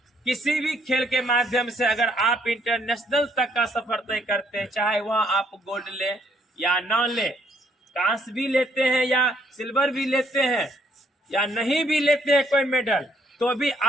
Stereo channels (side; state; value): both; normal; correlation 0.68